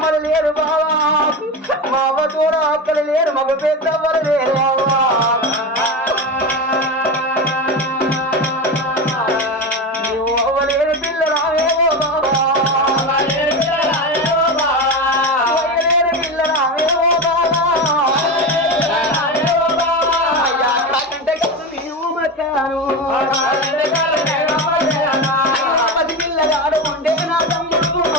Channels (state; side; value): normal; both; correlation 0.21